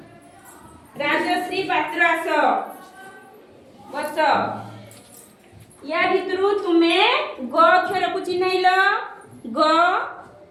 आस बस या भितरु तुमे ग अक्षर को चिन्हैल ग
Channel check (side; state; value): both; identical; correlation 1.00